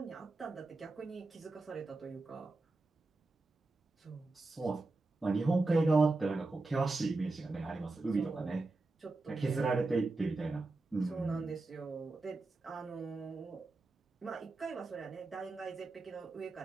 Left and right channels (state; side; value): quieter; left; 3.4 dB